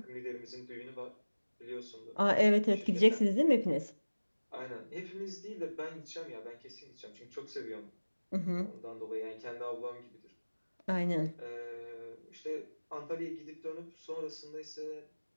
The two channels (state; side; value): inverted; both; correlation -1.00